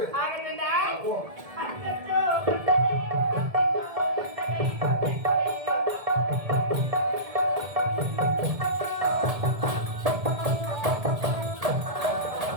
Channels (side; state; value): left; late; 1.7 ms